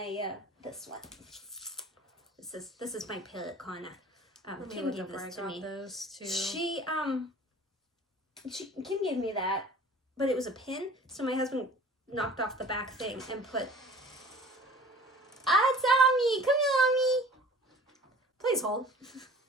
this one. This is my Parrot Kona. Kim gave this to me. Those too. Kim gave me that, but it was a pin, so my husband knocked off the back thing and put. Ah, it's Ami! Come here, Ami! Please hold.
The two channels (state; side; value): normal; both; correlation 0.46